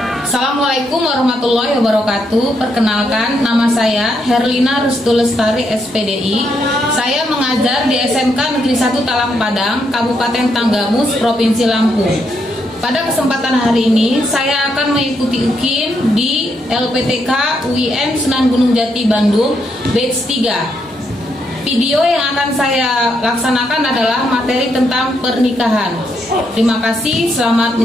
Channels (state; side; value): normal; both; correlation 0.78